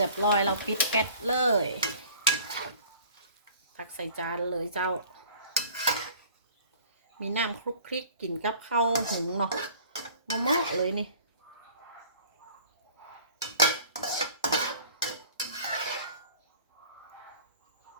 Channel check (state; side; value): inverted; both; correlation -0.49